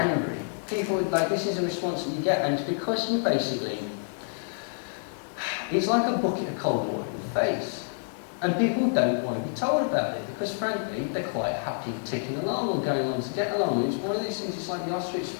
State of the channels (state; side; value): silent; right; 59 dB below the other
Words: People, like, this is a response that you get, and it's because you basically, it's like a bucket of cold water in the face. And people don't want to be told about it because, frankly, they're quite happy ticking along or going on to get along. It's one of these things, it's like the ostrich